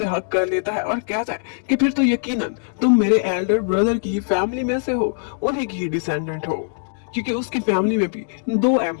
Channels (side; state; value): right; silent; digital silence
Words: हक कर लेता है और कहता है कि फिर तो यकीनन तुम मेरे एल्डर ब्रदर की फैमिली में से हो, उन्हीं की ही डिसेंडेंट हो, क्योंकि उसकी फैमिली में भी 2